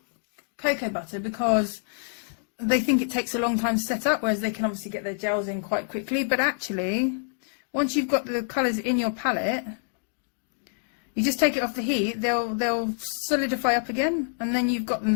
cocoa butter because they think it takes a long time to set up, whereas they can obviously get their gels in quite quickly. But actually, once you've got the colours in your palette, you just take it off the heat, they'll solidify up again, and then you've got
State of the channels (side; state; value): right; silent; digital silence